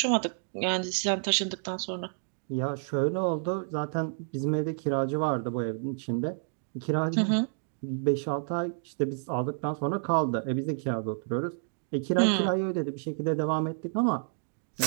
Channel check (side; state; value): left; silent; digital silence